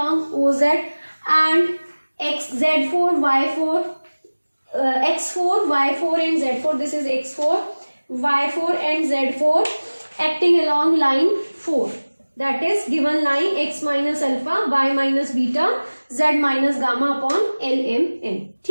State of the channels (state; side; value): inverted; both; correlation -1.00